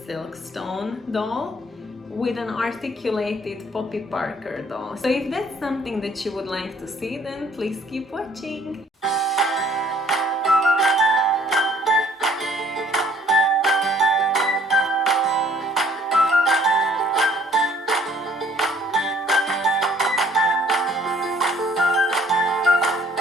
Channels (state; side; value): normal; both; correlation 0.58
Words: Silkstone doll with an articulated Poppy Parker doll. So if that's something that you would like to see, then please keep watching.